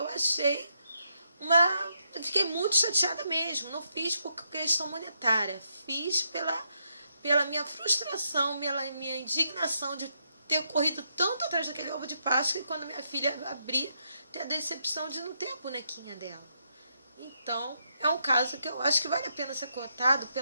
achei eu fiquei muito chateada mesmo. Não fiz por questão monetária, fiz pela minha frustração, pela minha indignação de ter corrido tanto atrás daquele ovo de Páscoa, e quando minha filha abrir, ter a decepção de não ter a bonequinha dela. Então, é um caso que eu acho que vale a pena ser contado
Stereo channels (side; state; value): both; inverted; correlation -0.79